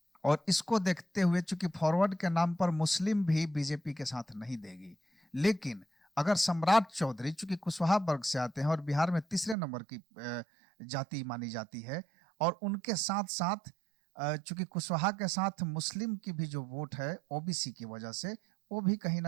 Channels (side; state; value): left; drops out; at 9.6 s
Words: और इसको देखते हुए चूंकि फॉरवर्ड के नाम पर मुस्लिम भी बीजेपी के साथ नहीं देगी, लेकिन अगर सम्राट चौधरी चूंकि कुशवाहा वर्ग से आते हैं और बिहार में तीसरे नंबर की जाति मानी जाती है, और उनके साथ साथ चूंकि कुशवाहा के साथ मुस्लिम की भी जो वोट है ओबीसी की वजह से, वो भी कहीं